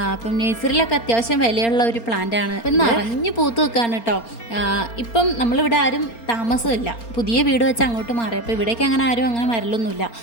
അപ്പം നേഴ്സറിയിലൊക്കെ അത്യാവശ്യം വിലയുള്ള ഒരു പ്ലാന്റാണ്. ഇപ്പം നിറഞ്ഞ് പൂത്ത് വെക്കാണ് കേട്ടോ. ഇപ്പം നമ്മളിവിടെ ആരും താമസമില്ല, പുതിയ വീട് വെച്ച് അങ്ങോട്ട് മാറി. അപ്പോൾ ഇവിടേക്ക് അങ്ങനെ വരലൊന്നുമില്ല.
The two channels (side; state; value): right; late; 4.3 ms